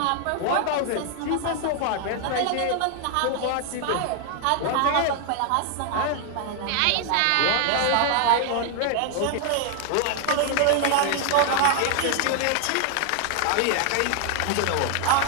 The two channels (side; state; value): both; different; correlation 0.00